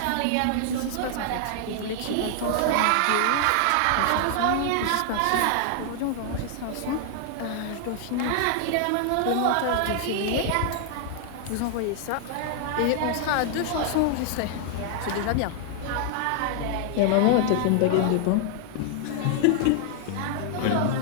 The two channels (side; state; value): both; different; correlation 0.00